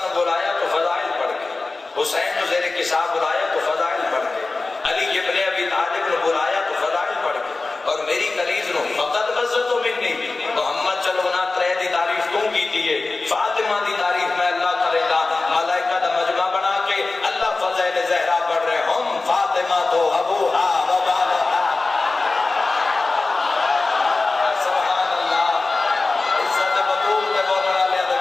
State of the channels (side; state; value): right; quieter; 3.5 dB